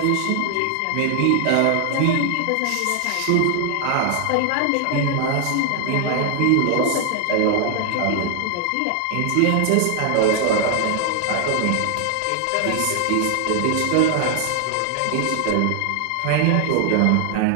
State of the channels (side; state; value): both; different; correlation 0.00